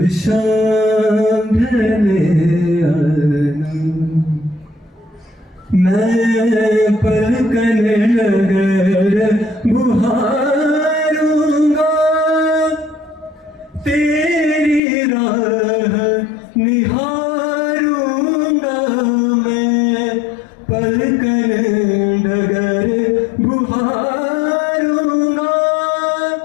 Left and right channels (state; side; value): drops out; right; at 14.8 s